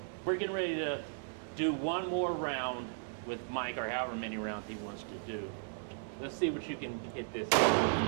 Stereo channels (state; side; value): silent; left; digital silence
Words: We're getting ready to do one more round with Mike, or however many rounds he wants to do. Let's see what you can hit this.